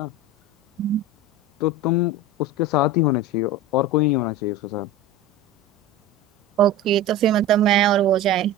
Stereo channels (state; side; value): normal; both; correlation 0.31